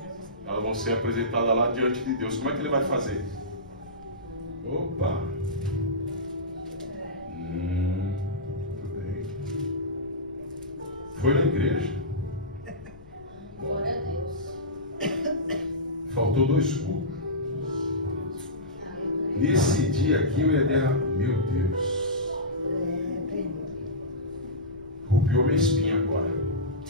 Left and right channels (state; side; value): noise; left; rumble, 23 dB below the sound